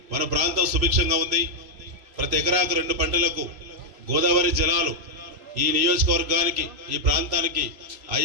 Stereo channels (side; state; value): left; late; 3.2 ms